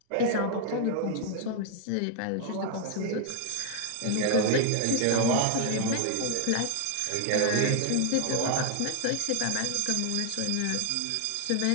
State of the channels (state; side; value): different; both; correlation 0.00